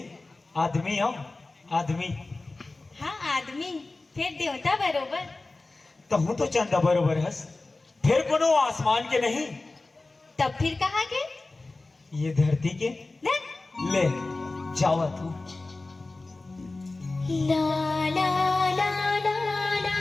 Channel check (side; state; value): right; quieter; 3.3 dB